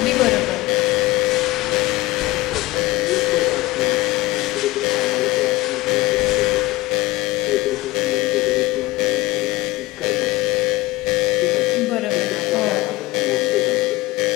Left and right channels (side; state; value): right; quieter; 19.5 dB